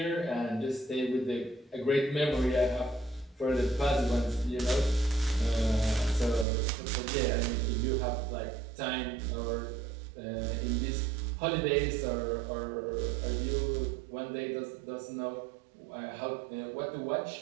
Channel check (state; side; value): drops out; left; at 6.5 s